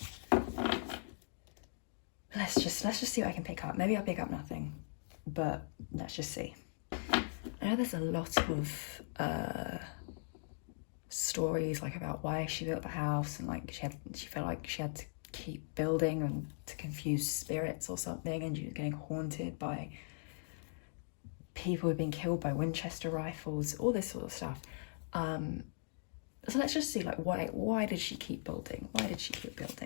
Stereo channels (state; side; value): silent; right; digital silence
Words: Let's just see what I can pick up. Maybe I'll pick up nothing, but let's just see. I know there's a lot of stories like about why she built the house, and like she felt like she had to keep building and to confuse spirits or something, and she was getting haunted by people who've been killed by Winchester rifles, all this sort of stuff. So let's just see, like, why did she keep building? Why did she keep